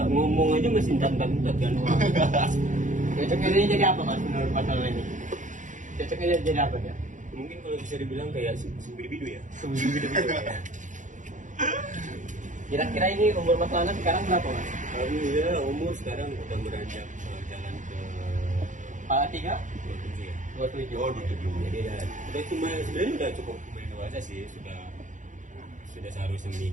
ngomong aja masih entat-entat kan. Cocoknya dia jadi apa Mas menurut Mas Lana ini? Cocoknya dia jadi apa dia? Mungkin kalau bisa dibilang kayak sumber-bidu ya. Kira-kira ini umur Mas Lana sekarang berapa Mas? Alhamdulillah umur sekarang udah beranjak jalan ke Kepala 3? 27 ya. 27. Oh, 27. Jadi ya, udah cuma sebenarnya udah cukup lumayan dewasa sih, sudah seharusnya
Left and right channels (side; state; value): left; late; 0.36 ms